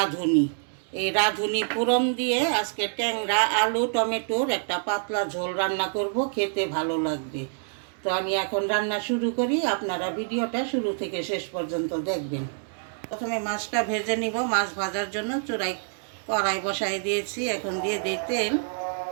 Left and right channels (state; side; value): silent; left; digital silence